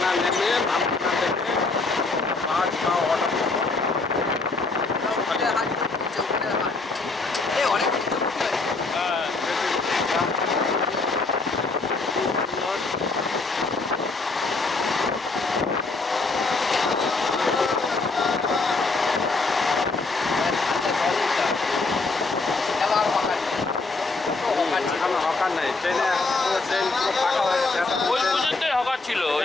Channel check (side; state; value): right; quieter; 3.7 dB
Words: নেমে নামখানা থেকে বাস বা অটো হকার নাই, ট্রেনে ট্রেন পুরো ফাঁকা হয়ে গেছে। ওই পর্যন্তই হকার ছিল।